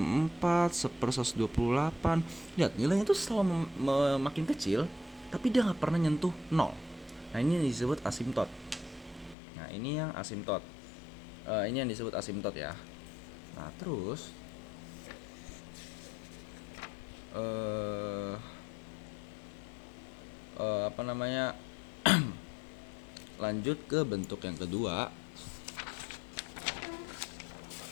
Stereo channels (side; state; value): right; drops out; at 9.3 s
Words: 1/128. Lihat, nilainya itu selalu makin kecil tapi dia gak pernah nyentuh 0. Nah, ini disebut asimtot. Nah, ini yang asimtot. Ini yang disebut asimtot ya. Nah, terus apa namanya? Lanjut ke bentuk yang kedua.